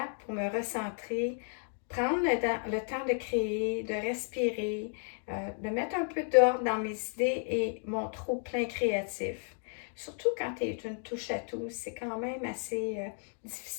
pour me recentrer, prendre le temps de créer, de respirer, de mettre un peu d'ordre dans mes idées et mon trop-plein créatif. Surtout quand tu es une touche à tout, c'est quand même assez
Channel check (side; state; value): right; silent; 56 dB below the other